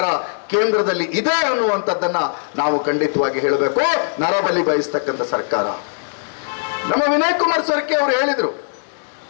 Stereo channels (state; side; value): silent; right; digital silence